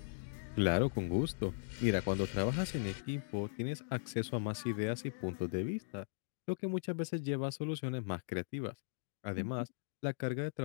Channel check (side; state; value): right; silent; digital silence